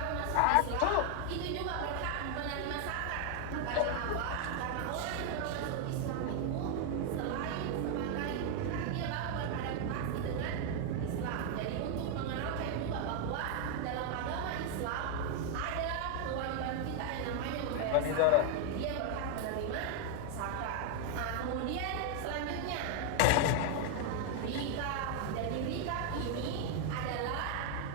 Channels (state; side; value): different; both; correlation 0.00